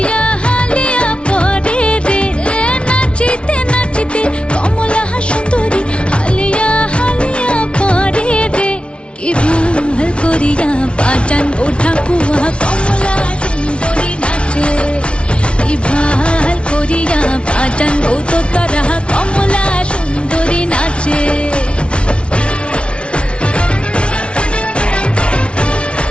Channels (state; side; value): late; right; 0.059 ms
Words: হালিয়া পরে রে নাচিতে নাচিতে কমলা সুন্দরী হালিয়া হালিয়া পরে রে কি ভাল করিয়া বাজান গো ঠাকুয়া কমলা সুন্দরী নাচে কি ভাল করিয়া বাজান গো তোতারা কমলা সুন্দরী নাচে